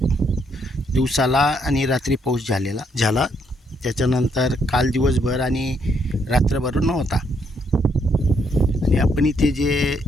दिवसाला आणि रात्री पाऊस झाला. त्याच्यानंतर काल दिवसभर आणि रात्रभर नव्हता. आणि आपण इथे जे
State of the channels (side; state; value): both; normal; correlation 0.73